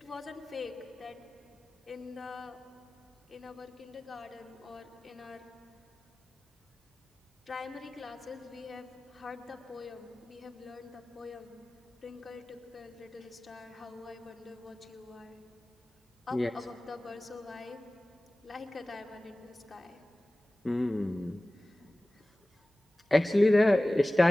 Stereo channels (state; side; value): normal; both; correlation 0.98